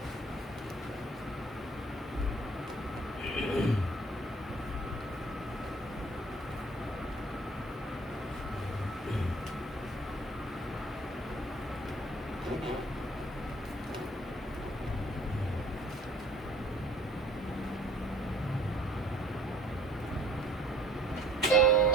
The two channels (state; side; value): normal; both; correlation 0.54